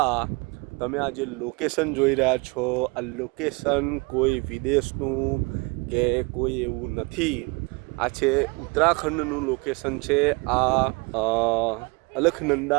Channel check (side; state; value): left; quieter; 28.0 dB